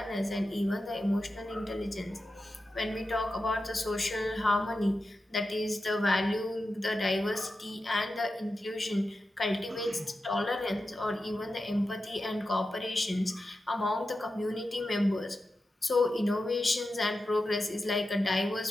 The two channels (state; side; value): normal; both; correlation 0.91